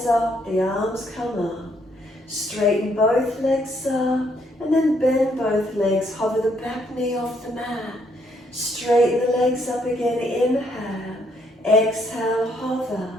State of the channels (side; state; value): both; normal; correlation 0.71